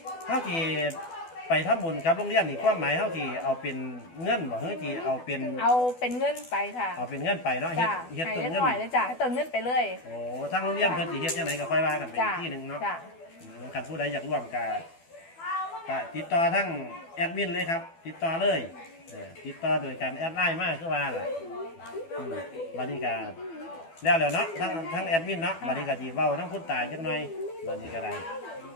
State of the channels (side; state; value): right; late; 12 ms